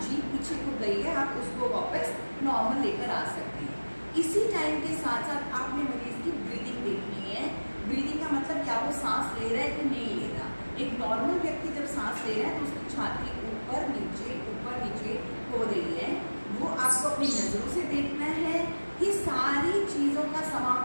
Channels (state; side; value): inverted; both; correlation -1.00